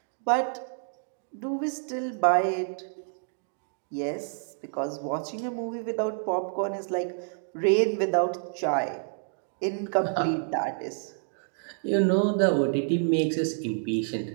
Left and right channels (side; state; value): left; silent; digital silence